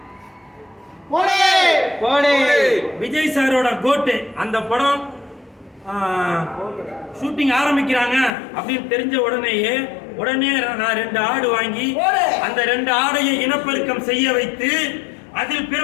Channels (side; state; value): right; drops out; at 8.3 s